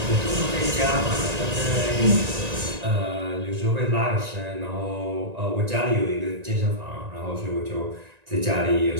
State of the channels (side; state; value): left; late; 1.9 ms